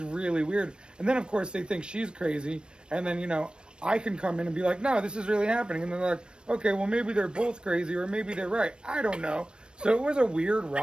really weird. And then of course they think she's crazy, and then, you know, I can come in and be like, no, this is really happening. And they're like, okay, well, maybe they're both crazy, or maybe they're right. I don't know. So it was a weird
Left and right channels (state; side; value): late; left; 0.053 ms